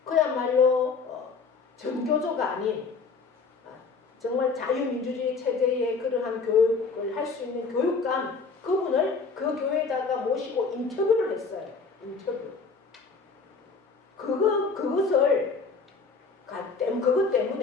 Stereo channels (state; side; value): quieter; right; 4.6 dB